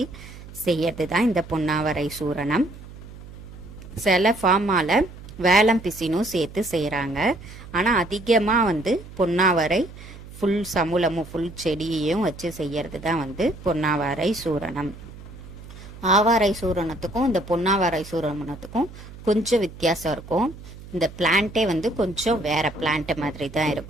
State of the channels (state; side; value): noise; right; hum, 16 dB below the sound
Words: செய்யறது தான் இந்த பொன்னாவாரை சூரணம். சில ஃபார்மால் வேலம் பிசினும் சேர்த்து செய்கிறாங்க. ஆனால் அதிகமாக பொன்னாவாரை ஃபுல் சமூலமும் ஃபுல் செடியையும் வச்சு செய்யறது தான் பொன்னாவாரை சூரணம். ஆவாரை சூரணத்துக்கும் இந்த பொன்னாவாரை சூரணத்துக்கும் கொஞ்சம் வித்தியாசம் இருக்கும். இந்த பிளான்ட்டே கொஞ்சம் வேற பிளான்ட் மாதிரி தான்